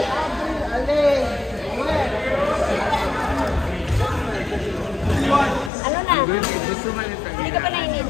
Ano na? Gusto man ito. Hindi ka pa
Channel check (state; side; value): drops out; right; at 5.7 s